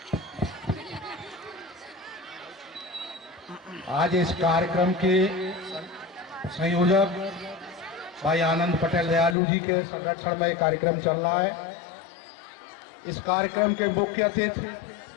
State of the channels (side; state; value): right; drops out; at 9.3 s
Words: आज इस कार्यक्रम के संयोजक भाई आनंद पटेल दयालु जी के संरक्षण में कार्यक्रम चल रहा है। इस कार्यक्रम के मुख्य अतिथि